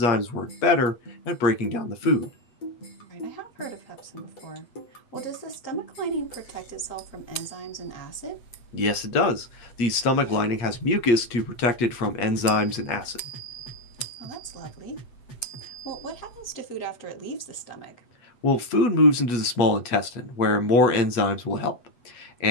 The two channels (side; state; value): right; late; 8.2 ms